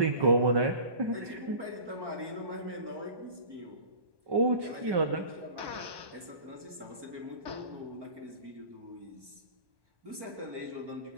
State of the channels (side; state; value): left; late; 1.2 ms